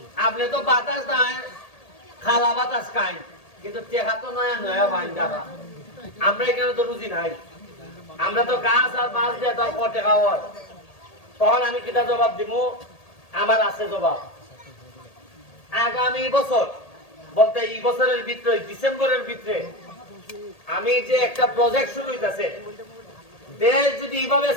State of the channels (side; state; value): right; late; 1.8 ms